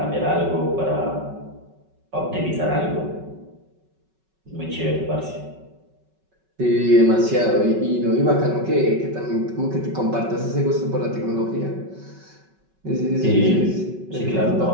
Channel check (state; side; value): late; left; 5.3 ms